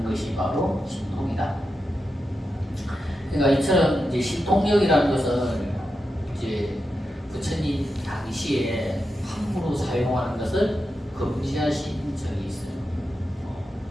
것이 바로 신통이다. 그러니까 이처럼 이제 신통력이라는 것은 이제 부처님 당시에 함부로 사용하는 것을 금지하신 적이 있어요.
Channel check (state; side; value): normal; both; correlation 0.88